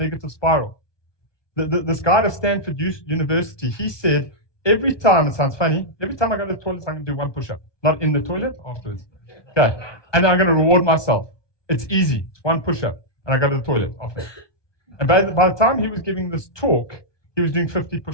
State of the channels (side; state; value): right; late; 1.2 ms